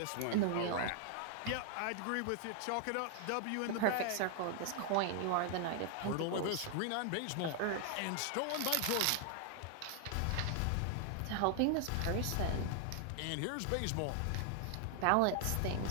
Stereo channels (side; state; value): both; different; correlation 0.00